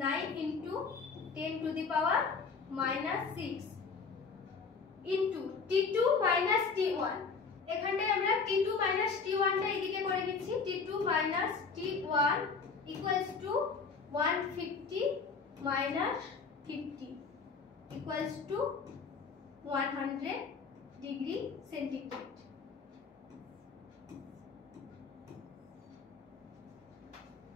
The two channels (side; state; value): right; quieter; 5.0 dB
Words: 9 into 10 to the power minus 6 into T2 minus T1। এখানটায় আমরা T2 মাইনাস T1 টা এদিকে করে নিচ্ছি। T2 minus T1 equals to 150 minus 50 equals to 100 degree centigrade.